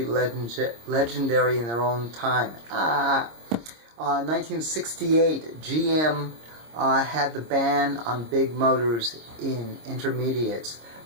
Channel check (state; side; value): late; left; 26 ms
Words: legendary in their own time. 1968, GM had the ban on big motors in intermediates.